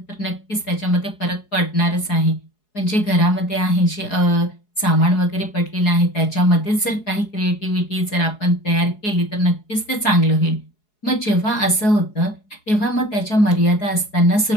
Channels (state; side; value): late; right; 4.8 ms